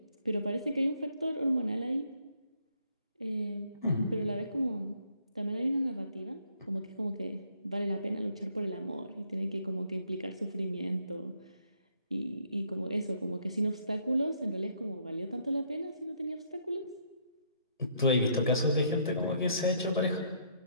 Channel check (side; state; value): both; inverted; correlation -0.68